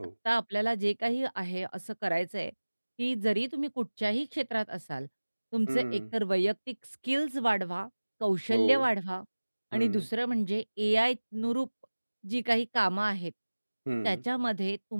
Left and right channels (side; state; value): both; inverted; correlation -1.00